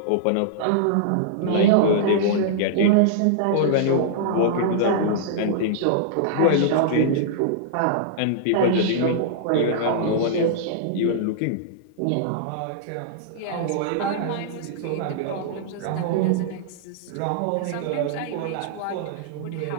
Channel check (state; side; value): different; both; correlation -0.02